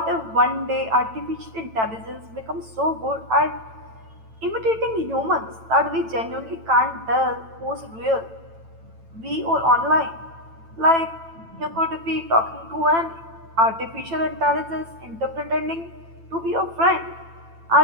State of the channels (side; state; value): left; late; 9.0 ms